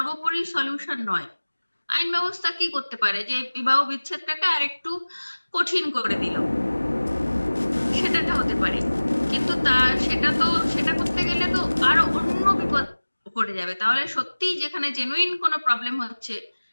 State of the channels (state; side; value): inverted; both; correlation -1.00